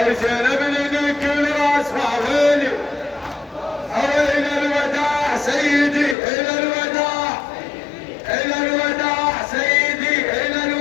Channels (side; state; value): right; drops out; at 6.2 s